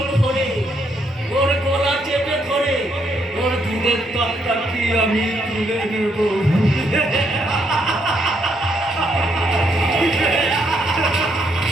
করে ওর গলা চেপে ধরে ওর দুধের তত্তা কি আমি তুলে নেব।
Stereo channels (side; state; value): both; normal; correlation 0.74